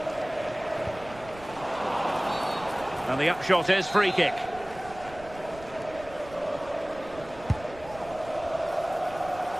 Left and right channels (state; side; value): noise; right; rumble, 18 dB below the sound